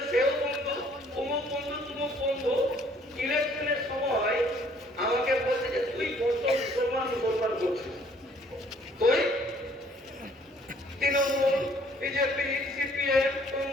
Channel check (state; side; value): normal; both; correlation 0.60